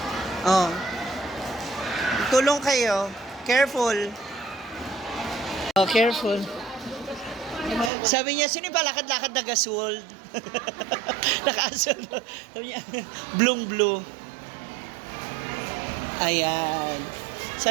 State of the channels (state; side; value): drops out; left; at 7.9 s